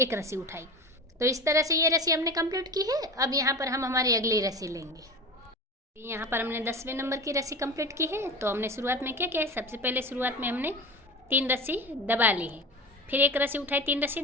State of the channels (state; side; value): normal; both; correlation 0.29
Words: रस्सी उठाई। तो इस तरह से ये रस्सी हमने कंप्लीट की है। अब यहाँ पर हम हमारी अगली रस्सी लेंगे। यहाँ पर हमने 10वें नंबर की रस्सी कंप्लीट की है। तो हमने शुरुआत में क्या किया है, सबसे पहले शुरुआत में हमने 3 रस्सी दबा ली है, फिर 1 रस्सी उठाई, 3 रस्सी